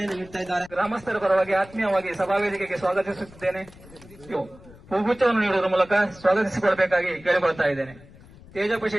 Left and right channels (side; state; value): left; noise; rumble, 22 dB below the sound